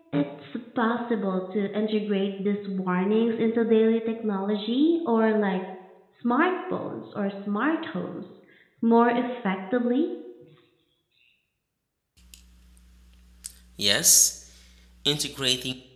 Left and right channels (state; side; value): identical; both; correlation 1.00